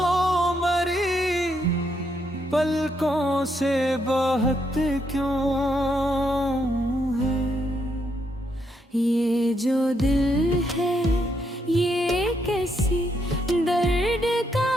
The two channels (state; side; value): normal; both; correlation 0.77